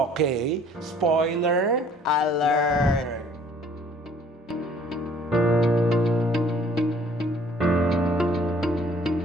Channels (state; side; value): normal; both; correlation 0.57